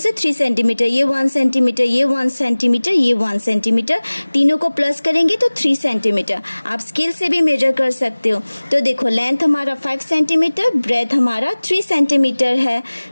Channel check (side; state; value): both; inverted; correlation -1.00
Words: 3 सेंटीमीटर, ये 1 सेंटीमीटर, ये 1 सेंटीमीटर, ये 1 सेंटीमीटर, तीनों को प्लस करेंगे तो 3 सेंटीमीटर। आप स्केल से भी मेजर कर सकते हो। तो देखो लेंथ हमारा 5 सेंटीमीटर, ब्रेथ हमारा 3 सेंटीमीटर है,